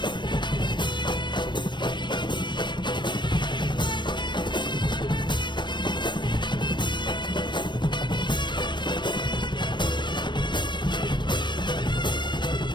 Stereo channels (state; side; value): late; right; 0.22 ms